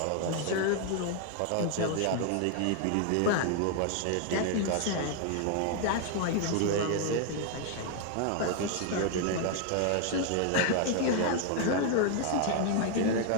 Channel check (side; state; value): both; different; correlation 0.00